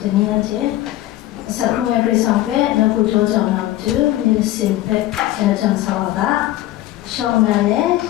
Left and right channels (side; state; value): right; quieter; 15.2 dB